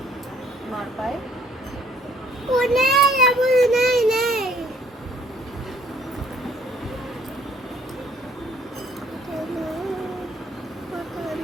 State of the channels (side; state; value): both; normal; correlation 0.60